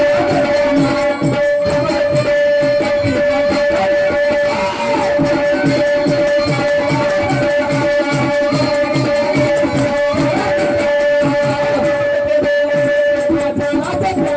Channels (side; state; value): both; identical; correlation 1.00